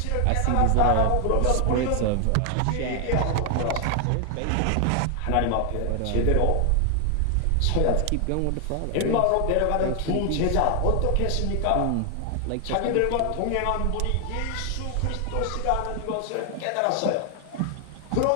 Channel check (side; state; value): both; different; correlation 0.00